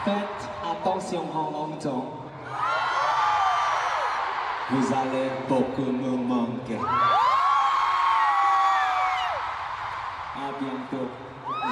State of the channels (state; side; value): identical; both; correlation 1.00